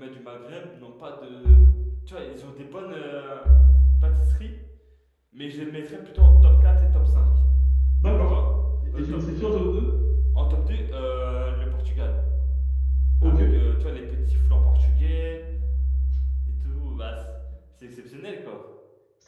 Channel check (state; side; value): identical; both; correlation 1.00